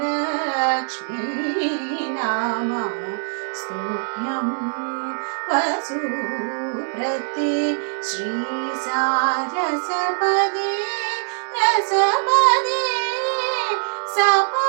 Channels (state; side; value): silent; left; digital silence